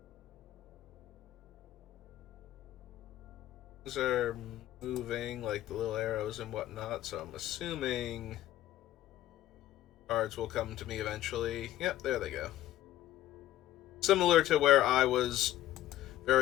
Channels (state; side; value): quieter; right; 14.0 dB